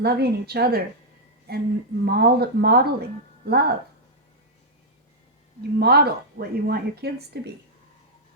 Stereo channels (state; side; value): normal; both; correlation -0.06